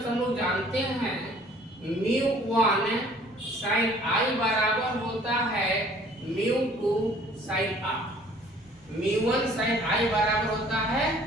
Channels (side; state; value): both; normal; correlation 0.55